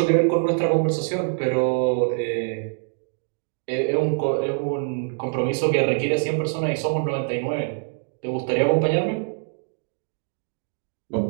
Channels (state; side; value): silent; left; digital silence